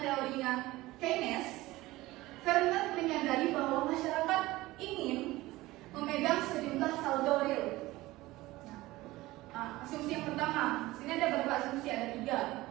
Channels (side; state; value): left; quieter; 18.6 dB